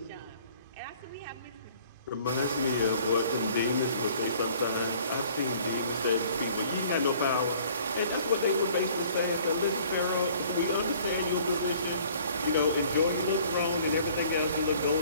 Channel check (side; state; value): both; inverted; correlation -0.54